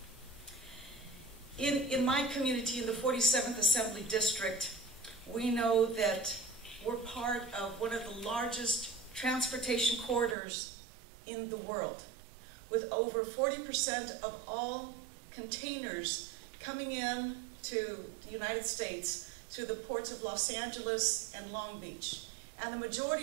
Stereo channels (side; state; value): left; drops out; at 10.4 s